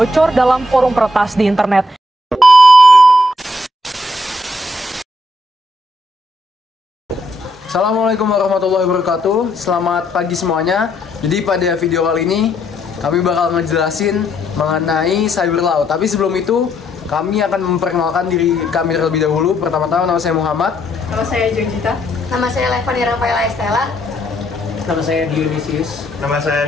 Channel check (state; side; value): normal; both; correlation 0.73